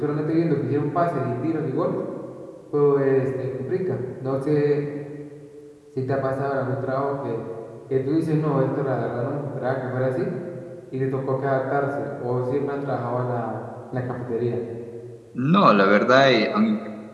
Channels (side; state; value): both; identical; correlation 1.00